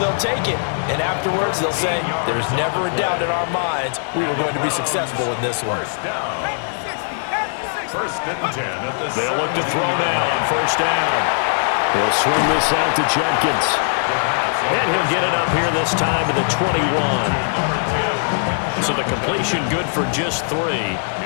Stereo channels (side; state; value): right; silent; 66 dB below the other